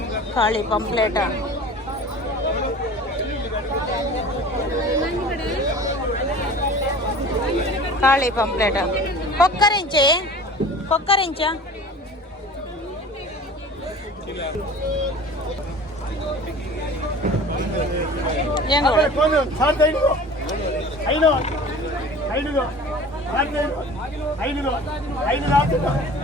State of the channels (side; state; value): both; normal; correlation 0.41